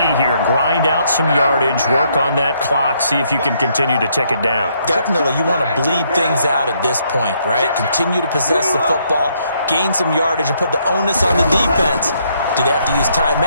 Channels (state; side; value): inverted; both; correlation -0.72